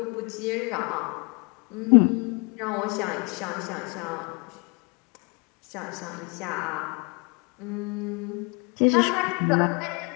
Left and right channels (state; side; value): quieter; right; 31.1 dB